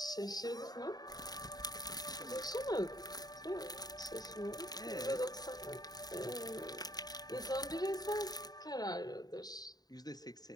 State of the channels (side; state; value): right; late; 0.19 ms